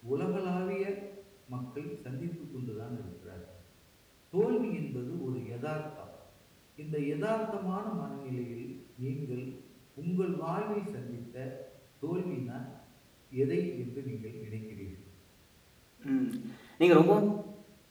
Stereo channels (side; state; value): both; identical; correlation 1.00